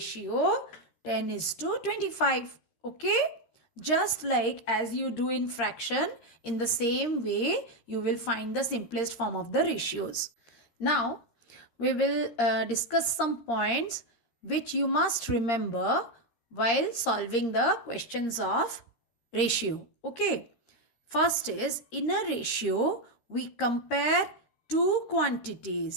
10:25. Okay? Just like as you do in fraction, in the same way you will find the simplest form of the ratios. Now we will discuss some points which you must remember while solving the questions of ratio. Okay. First is, in a ratio we compare two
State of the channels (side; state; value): right; late; 13 ms